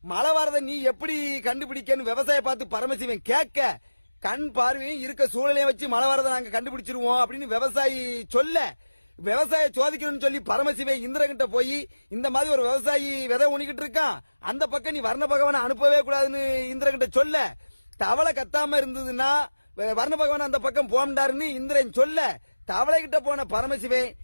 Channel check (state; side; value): inverted; both; correlation -1.00